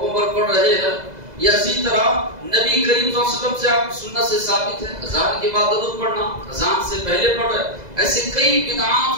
پر پڑھ رہے ہیں، یا اسی طرح نبی کریم صلی اللہ علیہ وسلم سے آپ سنت سے ثابت ہے اذان کے بعد درود پڑھنا، اذان سے پہلے پڑھ رہے۔ ایسے کئی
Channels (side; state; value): left; late; 2.0 ms